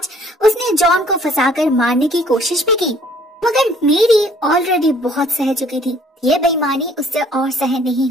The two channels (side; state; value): both; normal; correlation 0.58